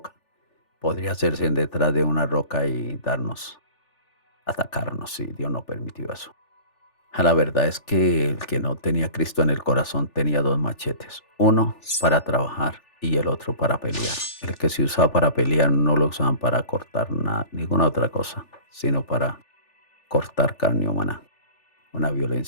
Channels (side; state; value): right; late; 3.4 ms